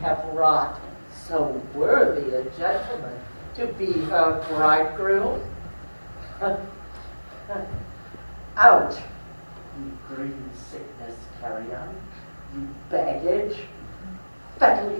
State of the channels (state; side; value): inverted; both; correlation -1.00